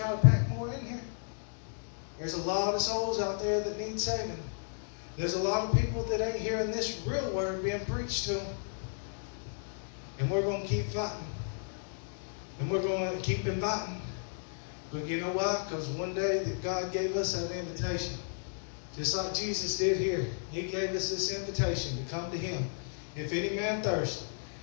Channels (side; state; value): right; silent; digital silence